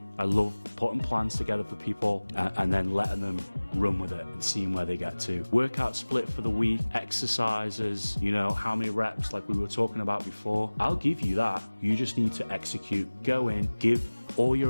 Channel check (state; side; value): inverted; both; correlation -1.00